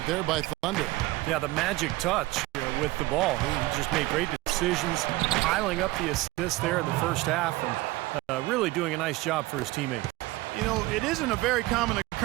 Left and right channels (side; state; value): left; quieter; 19.8 dB